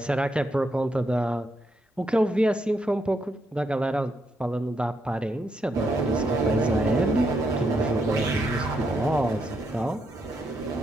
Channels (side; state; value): both; normal; correlation 0.79